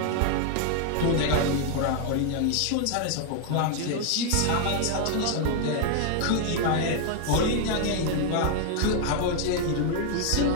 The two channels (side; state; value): both; different; correlation 0.00